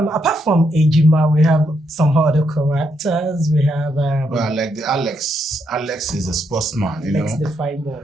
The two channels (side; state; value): both; normal; correlation 0.78